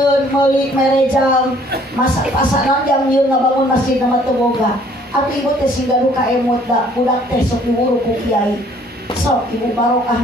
meuli merejang masa pasanan jam ieu ngabangun masjid nama teu boga. Atuh Ibu teh singgaru ka emot da budak teh sok diwuru ku kiai. Sok Ibu barokah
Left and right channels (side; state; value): both; normal; correlation 0.59